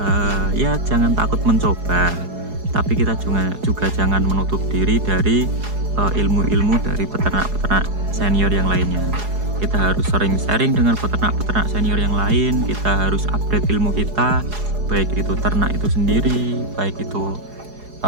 ya jangan takut mencoba, tapi kita juga jangan menutup diri dari ilmu-ilmu dari peternak-peternak senior yang lainnya. Kita harus sering sharing dengan peternak-peternak senior yang lain, kita harus update ilmu kita, baik itu ternak itu sendiri, baik itu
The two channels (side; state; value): left; late; 4.8 ms